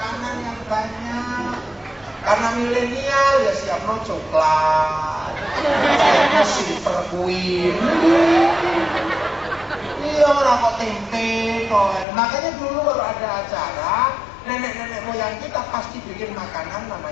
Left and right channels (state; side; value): drops out; right; at 12.1 s